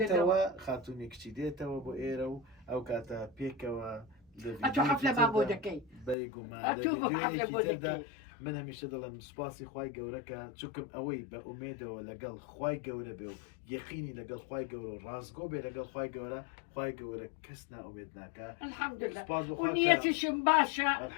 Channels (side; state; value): right; drops out; at 6.2 s